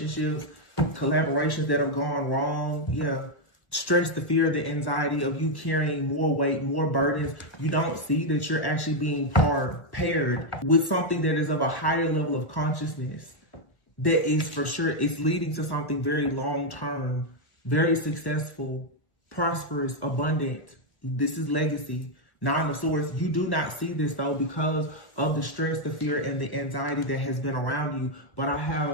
collaborations that have gone wrong. Yeah. Stress, the fear, the anxiety of you carrying more weight, more burdens. You don't see that you're actually being paired with something that is of a higher level of consciousness. That is for sure, it's leading to something very long-term, very successful, prosperous, abundant. This is legacy. Nine of Swords. You do not see this though because of the stress, the fear, and the anxiety that has been around you. But I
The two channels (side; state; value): right; late; 1.4 ms